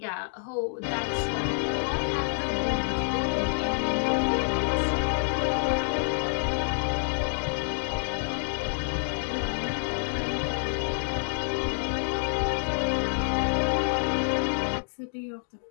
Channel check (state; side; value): silent; right; digital silence